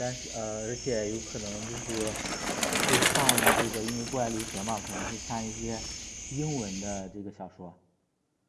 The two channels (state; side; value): identical; both; correlation 1.00